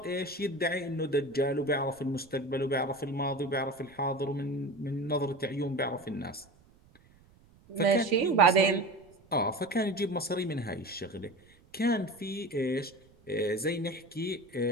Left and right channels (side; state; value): right; noise; rumble, 29 dB below the sound